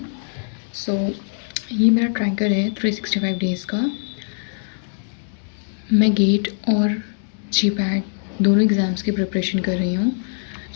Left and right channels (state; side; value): silent; right; digital silence